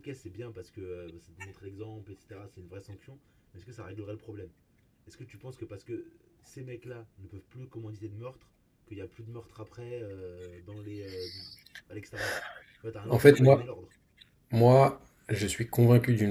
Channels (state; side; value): identical; both; correlation 1.00